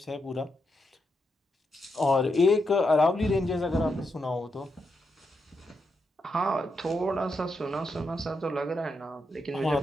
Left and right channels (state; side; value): normal; both; correlation 0.83